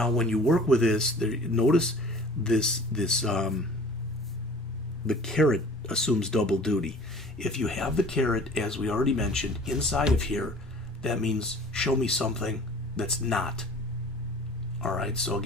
when you work with this, notice the caret assumes double duty. If you have the caret, as we already mentioned, inside of here, that means show me something that's not. All right, so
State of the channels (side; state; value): both; normal; correlation 0.46